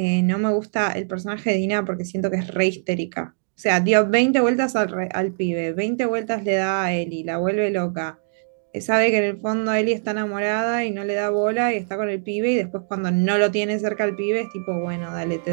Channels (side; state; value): left; silent; digital silence